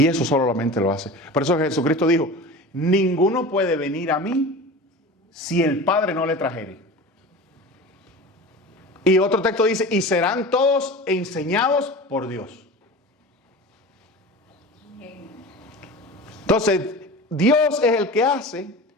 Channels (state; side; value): normal; both; correlation 0.34